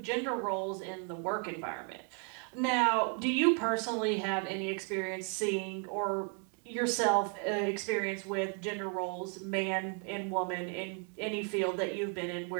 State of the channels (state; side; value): quieter; left; 38.8 dB